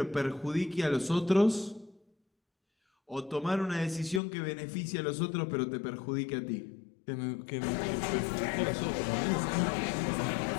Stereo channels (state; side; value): drops out; right; at 4.2 s